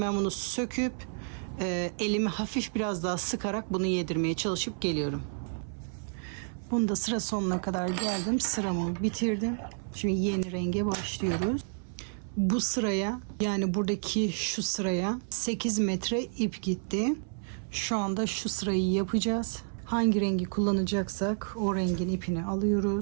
ben bunu söküp elimi hafif biraz daha sıkarak bunu yedirmeye çalışıp geliyorum. Bunu da sıra sonuna kadar geldim. Sıramı bitirdim. Şimdi yeni renge başlıyoruz. Bu sıraya, yani buradaki şu sıraya 8 metre ip gitti. Şu anda şu sırayı yapacağız. Hangi rengi kullanacaksak o rengin ipini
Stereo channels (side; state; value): left; silent; 58 dB below the other